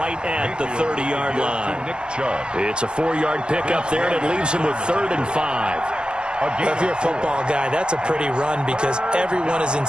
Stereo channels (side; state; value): left; late; 0.050 ms